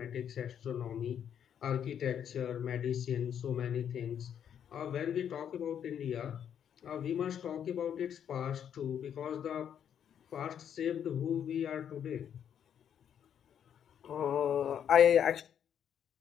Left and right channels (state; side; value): quieter; right; 8.9 dB